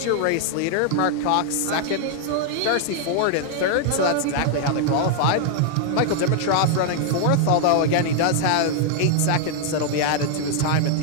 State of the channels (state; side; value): different; both; correlation 0.00